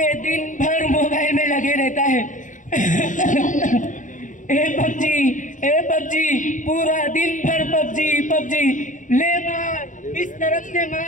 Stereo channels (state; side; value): late; right; 0.37 ms